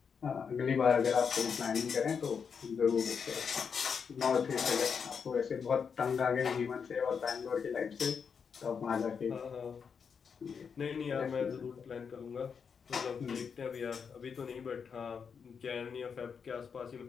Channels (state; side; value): quieter; right; 6.3 dB